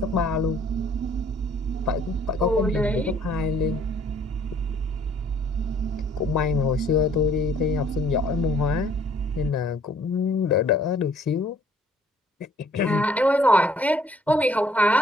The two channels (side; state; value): both; normal; correlation 0.60